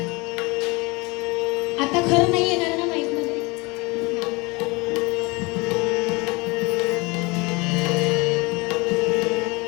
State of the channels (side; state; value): right; quieter; 25.8 dB